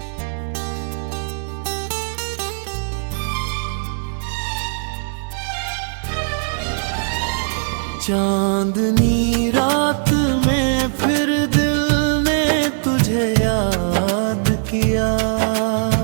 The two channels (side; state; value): left; silent; digital silence